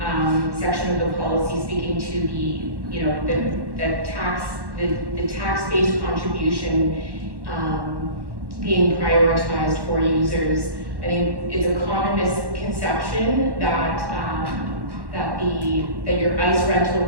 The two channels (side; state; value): left; late; 1.1 ms